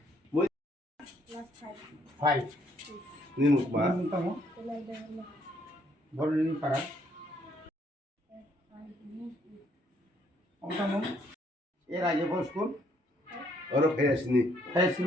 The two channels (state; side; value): normal; both; correlation 0.68